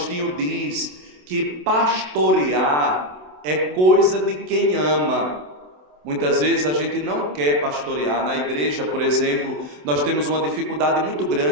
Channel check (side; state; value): left; late; 27 ms